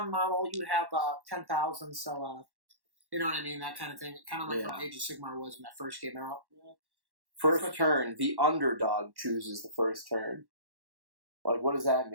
model. You have 10,000. So you know what I mean? That kind of thing. Kind of like how Age of Sigmar was when that first came out. First turn, the underdog chooses the first turn. Like, what does that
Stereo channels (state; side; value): late; left; 1.1 ms